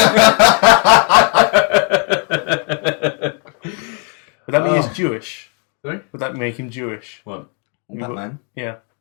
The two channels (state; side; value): quieter; right; 39.5 dB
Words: that mean he's Jewish? Sorry? Would that make him Jewish? What? Batman. Yeah.